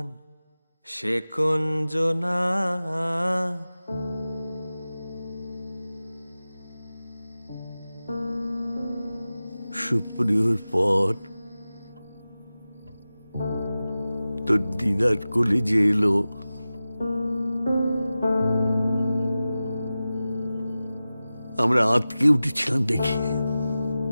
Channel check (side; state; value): both; inverted; correlation -0.95